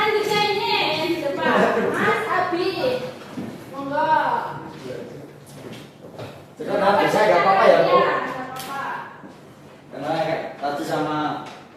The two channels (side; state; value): both; identical; correlation 1.00